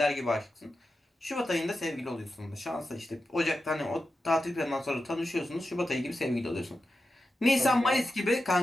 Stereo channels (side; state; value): both; normal; correlation 0.91